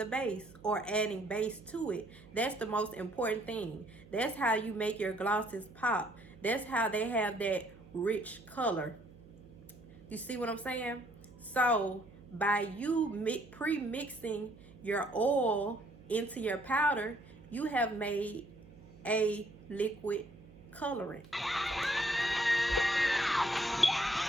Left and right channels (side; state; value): right; noise; hum, 22 dB below the sound